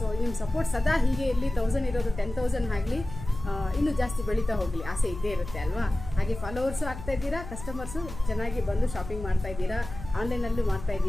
ನಿಮ್ಮ ಸಪೋರ್ಟ್ ಸದಾ ಹೀಗೆ ಇರಲಿ. 1000 ಇರೋದು 10,000 ಆಗಲಿ, ಇನ್ನೂ ಜಾಸ್ತಿ ಬೆಳೀತಾ ಹೋಗಲಿ, ಆಸೆ ಇದ್ದೇ ಇರುತ್ತೆ ಅಲ್ವಾ. ಹಾಗೆ ಫಾಲೋವರ್ಸು ಆಗ್ತಾ ಇದ್ದೀರಾ, ಕಸ್ಟಮರ್ಸು ಚೆನ್ನಾಗಿ ಬಂದು ಶಾಪಿಂಗ್ ಮಾಡ್ತಾ ಇದ್ದೀರಾ, ಆನ್ಲೈನಲ್ಲೂ ಮಾಡ್ತಾ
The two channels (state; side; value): noise; left; hum, 11 dB below the sound